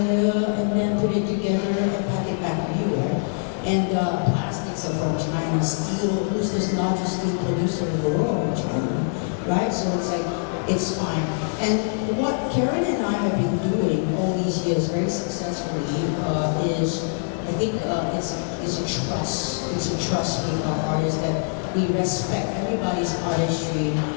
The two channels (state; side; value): silent; right; digital silence